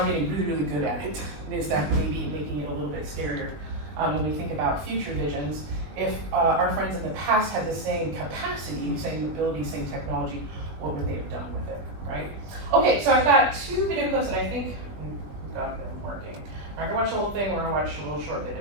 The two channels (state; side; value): late; left; 20 ms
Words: getting really, really good at it. Is that maybe making it a little bit scarier when we think about future visions? If our friends in the past had the same capacity, same ability, same technology, what would they have done with it, right? Okay, so I've got 2 video clips that I think we've got them working. We're not going to watch the whole thing, we're going to watch a little short bit